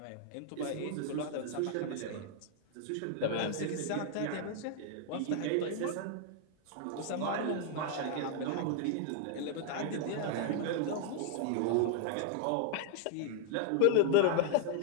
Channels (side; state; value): both; different; correlation 0.00